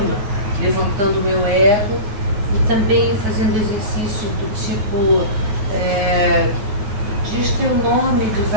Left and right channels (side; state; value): left; late; 9.8 ms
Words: levantando o meu ego e também fazendo exercícios do tipo diz teu nome de